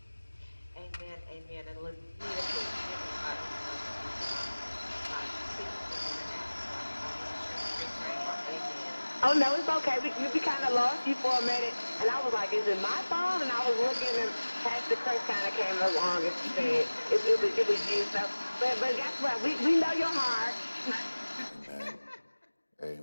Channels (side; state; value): both; inverted; correlation -1.00